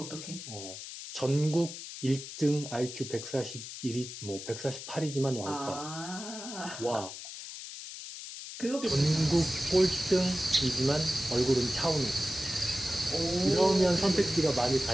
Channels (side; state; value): left; noise; hiss, 10 dB below the sound